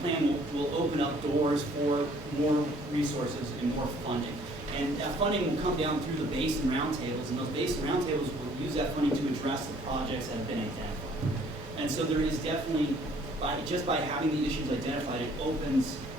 will open up doors for more resources and more funding. And that funding will come down through the Basin Roundtables, and those Basin Roundtables will use that funding to address the projects that have been identified. And so there is definitely, just by having the issues identified, it opens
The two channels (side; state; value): both; normal; correlation 0.59